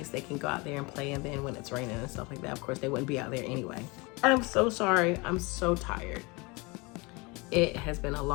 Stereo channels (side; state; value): right; quieter; 26.6 dB